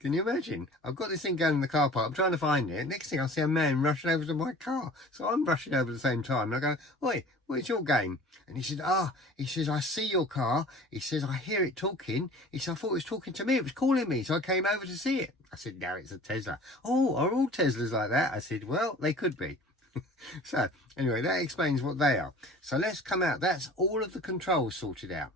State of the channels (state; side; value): normal; both; correlation 0.44